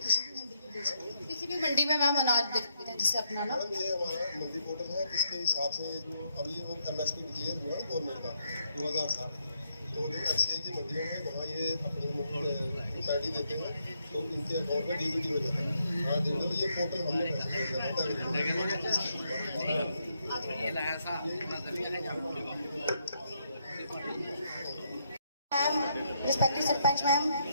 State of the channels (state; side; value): inverted; both; correlation -0.77